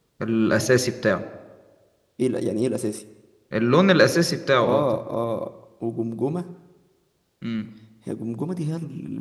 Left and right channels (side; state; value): both; identical; correlation 1.00